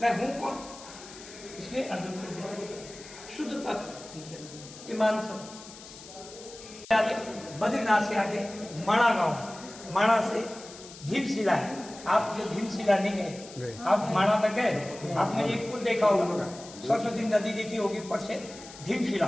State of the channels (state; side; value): noise; left; hiss, 16 dB below the sound